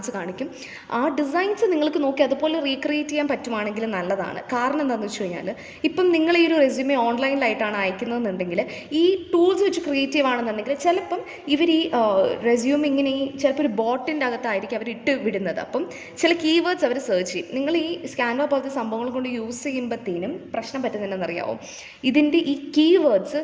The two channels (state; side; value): identical; both; correlation 1.00